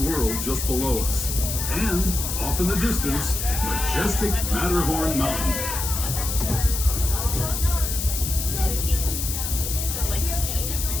just below us. And, off in the distance, majestic Matterhorn Mountain.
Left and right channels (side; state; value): left; noise; hiss, 4 dB below the sound